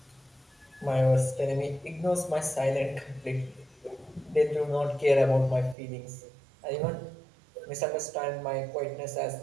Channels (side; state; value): left; drops out; at 5.8 s